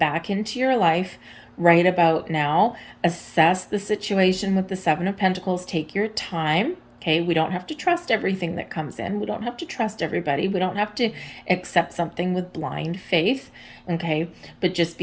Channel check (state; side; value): identical; both; correlation 1.00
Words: into your life right about now. Assess the situation with the Seven of Pentacles. Take your time. Okay, we don't have to trust everything that comes in. We don't have to trust everybody. We don't have to accept something with blind faith. Okay, but just